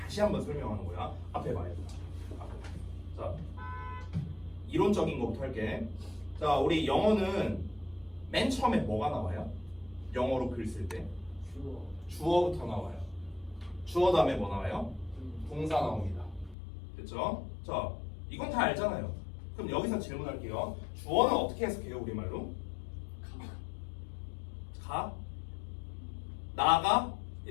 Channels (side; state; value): right; drops out; at 16.6 s